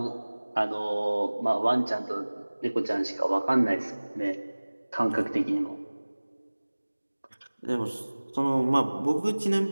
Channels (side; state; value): both; inverted; correlation -1.00